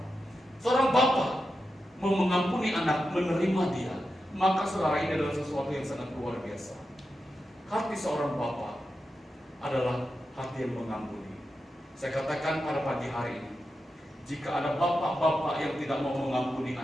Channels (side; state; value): both; normal; correlation 0.89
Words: Seorang bapak mengampuni anak, menerima dia, maka saudara, ini adalah sesuatu yang sangat luar biasa. Hati seorang bapak adalah hati yang mengampuni. Saya katakan pada pagi hari ini, jika ada bapak-bapak yang tidak mau mengampuni